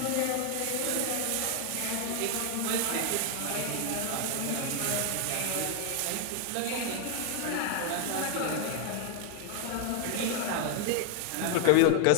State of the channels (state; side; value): different; both; correlation 0.01